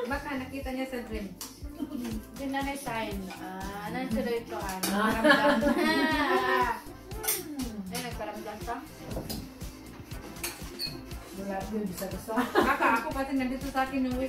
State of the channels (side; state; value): both; identical; correlation 1.00